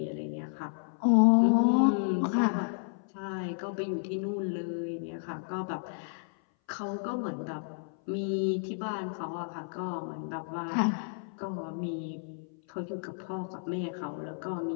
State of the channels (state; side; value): silent; right; 57 dB below the other